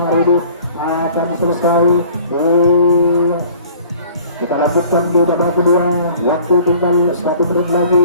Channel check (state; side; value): inverted; both; correlation -0.51